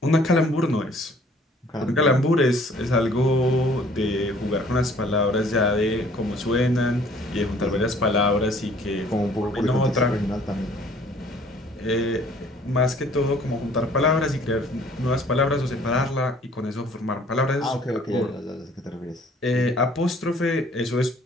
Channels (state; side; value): normal; both; correlation 0.56